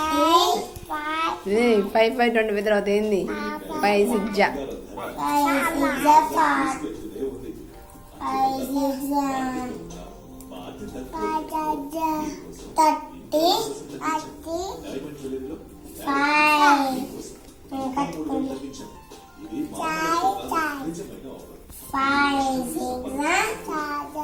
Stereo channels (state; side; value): identical; both; correlation 1.00